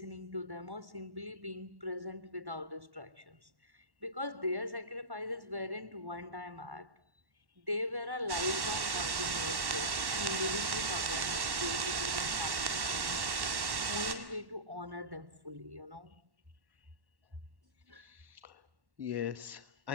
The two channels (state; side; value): late; left; 1.1 ms